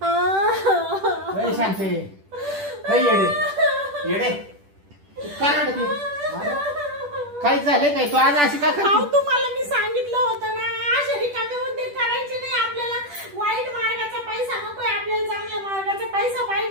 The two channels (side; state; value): left; late; 10 ms